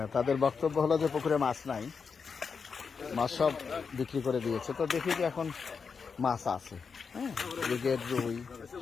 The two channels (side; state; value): right; quieter; 5.6 dB